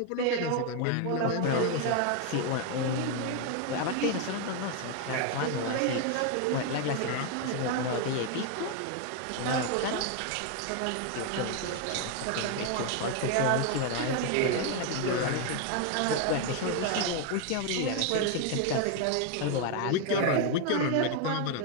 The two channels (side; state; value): both; different; correlation 0.01